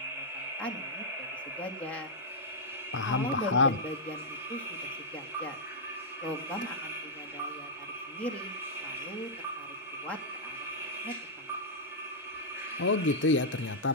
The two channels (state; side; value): normal; both; correlation -0.09